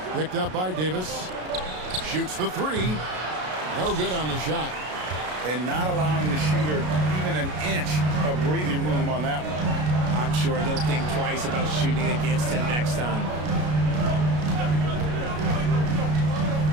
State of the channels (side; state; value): left; late; 33 ms